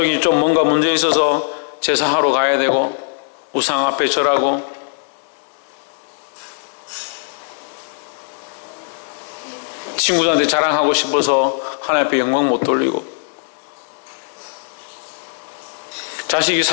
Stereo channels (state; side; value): silent; right; digital silence